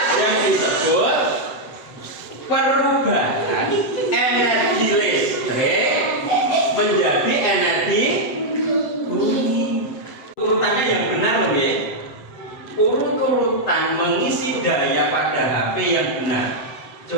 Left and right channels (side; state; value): right; late; 7.7 ms